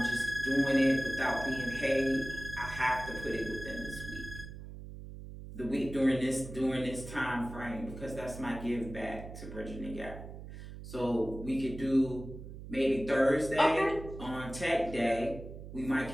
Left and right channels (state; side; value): noise; right; hum, 12 dB below the sound